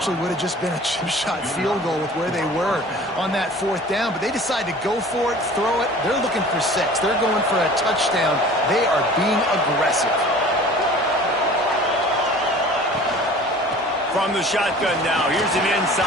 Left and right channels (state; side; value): normal; both; correlation 0.45